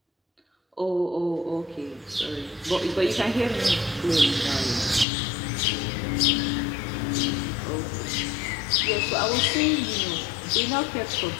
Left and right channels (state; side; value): drops out; right; at 5.1 s